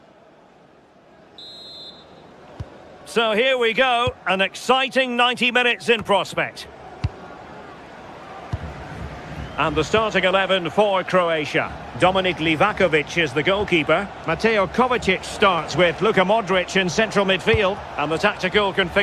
So here we go, an exciting 90 minutes in prospect. And the starting 11 for Croatia. Dominik Livakovic is the goalkeeper. Mateo Kovacic starts with Luka Modric in central midfield. And the tactical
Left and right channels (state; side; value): identical; both; correlation 1.00